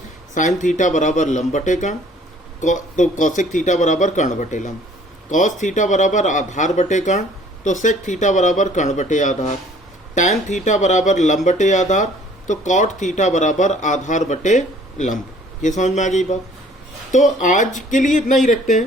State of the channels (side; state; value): both; normal; correlation 0.55